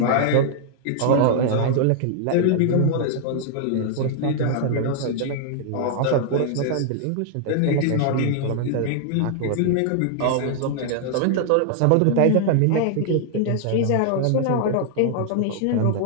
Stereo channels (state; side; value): different; both; correlation 0.00